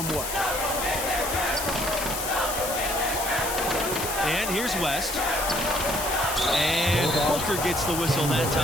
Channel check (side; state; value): left; noise; hiss, 4 dB below the sound